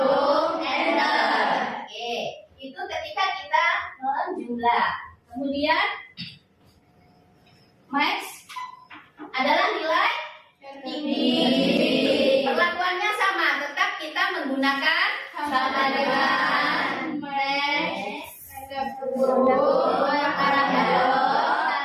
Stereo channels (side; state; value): both; identical; correlation 1.00